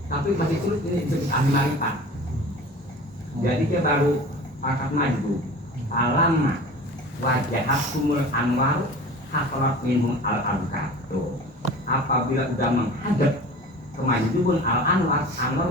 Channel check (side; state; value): both; normal; correlation 0.39